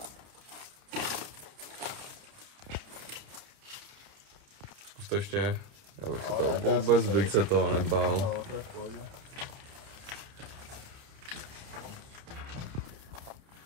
Zkus to ještě. Já bych se to vůbec bych se toho nebál.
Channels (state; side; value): late; left; 30 ms